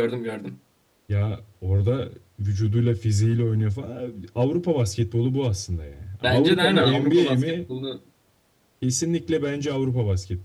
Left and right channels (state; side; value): identical; both; correlation 1.00